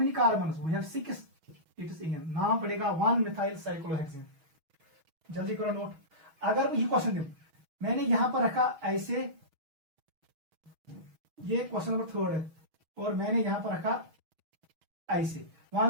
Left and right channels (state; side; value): late; left; 6.2 ms